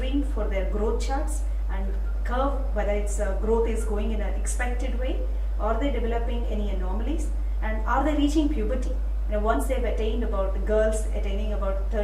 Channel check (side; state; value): both; identical; correlation 1.00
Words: for their growth charts and curve whether its growth is going in an expected way, are they developing any anomalies, and are they reaching puberty. Once they've attained, about the girls attaining about